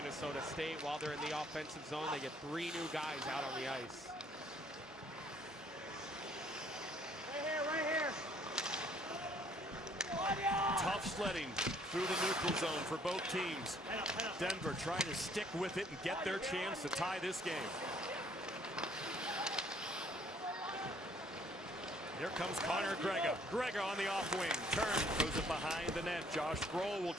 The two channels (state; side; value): normal; both; correlation 0.61